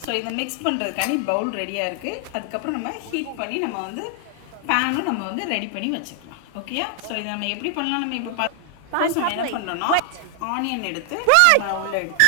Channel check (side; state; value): both; different; correlation 0.00